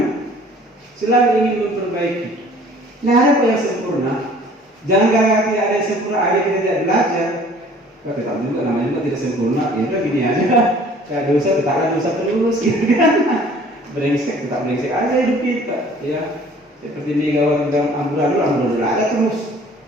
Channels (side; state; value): both; normal; correlation 0.52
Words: Selalu ingin memperbaiki. Nah ada yang sempurna. Jangan gara-gara tidak ada yang sempurna, ada kita tidak belajar. Kita tetap juga namanya juga tidak sempurna. Ya udah gini aja. Kayak dosa tetap ada dosa terus, gitu kan? Brengsek tetap brengsek aja hidup kita, ya. Seperti Megawati dalam amburadul ada terus.